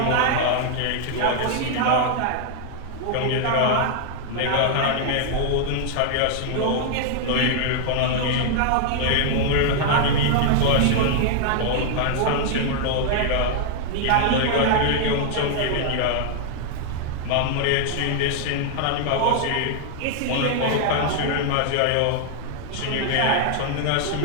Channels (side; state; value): both; different; correlation 0.00